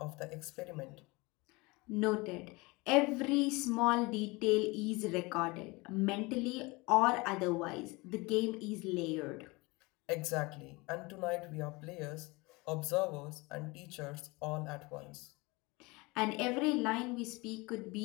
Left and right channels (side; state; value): right; quieter; 24.6 dB